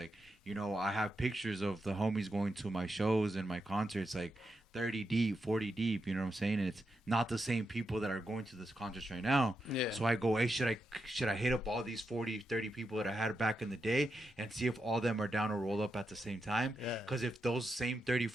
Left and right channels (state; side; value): normal; both; correlation 0.86